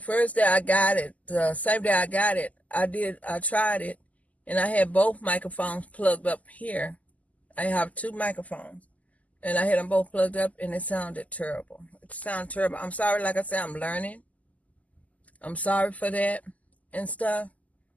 day I got it, the same day I got it, I tried it, and I had both microphones plugged up here. I have two microphones, and I had them both plugged up, and it sounded terrible. It sounded terrible. I'm sorry, like I said, I'm learning. I'm sorry for that and stuff.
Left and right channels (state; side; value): late; right; 0.075 ms